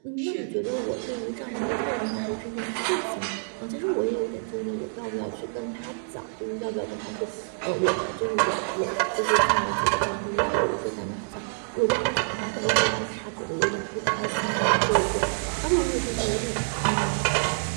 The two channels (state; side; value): silent; left; digital silence